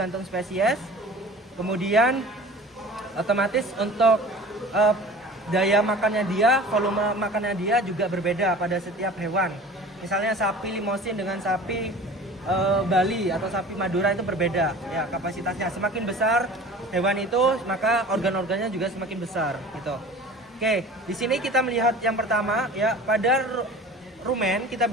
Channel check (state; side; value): normal; both; correlation 0.41